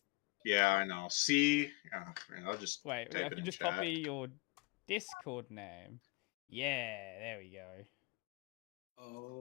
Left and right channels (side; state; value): right; quieter; 27.1 dB